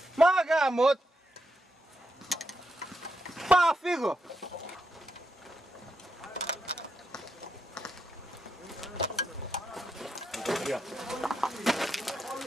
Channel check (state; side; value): normal; both; correlation 0.83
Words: Μα γάμο! Πάω, φύγω!